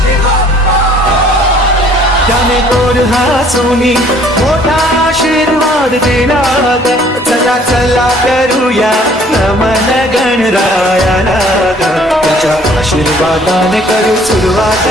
त्याने गोड हसूनी मोठा आशीर्वाद दिला. चला चला करूया नमन गणरायाला. त्याच्या आशीर्वादाने करू सुरुवात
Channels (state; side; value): normal; both; correlation 0.57